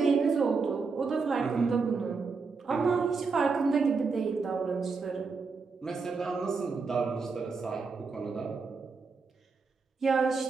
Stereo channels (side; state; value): left; quieter; 4.7 dB